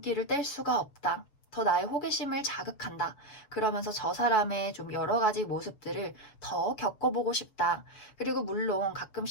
뗄 수가 없다. 더 나의 호기심을 자극한다. 그러면서 저 사람의 좀 여러 가지 모습들을 더 겪어보고 싶다. 그리고 물론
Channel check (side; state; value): right; late; 7.0 ms